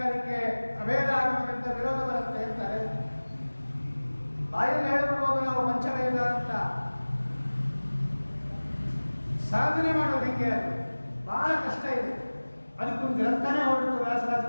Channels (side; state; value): both; inverted; correlation -1.00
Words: ಅದಕ್ಕೆ ಅಭೇದ ಆಗಮನದಿಂದ ವಿರೋಧ ಬರುತ್ತೆ ಅಂತಾರೆ. ಬಾಯಲ್ಲಿ ಹೇಳ್ಬಿಡ್ಬೋದು ನಾವು ಪಂಚಭೇದ ಅಂತ, ಸಾಧನೆ ಮಾಡೋದು ಹೆಂಗೆ? ಅದು ಬಹಳ ಕಷ್ಟ ಇದೆ. ಅದಕ್ಕೊಂದು ಗ್ರಂಥನೇ ಹೊರಟು